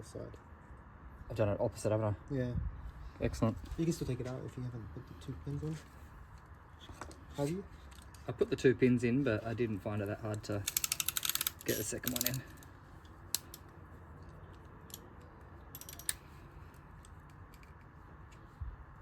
side. I've done it opposite, haven't I? Yeah. Excellent. You can still take it out if you haven't put the 2 pins in. Have you? I put the 2 pins in, but I didn't find it that hard to get the second one in.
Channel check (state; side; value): identical; both; correlation 1.00